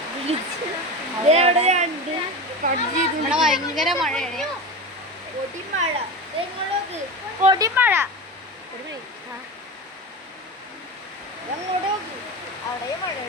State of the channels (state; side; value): normal; both; correlation 0.25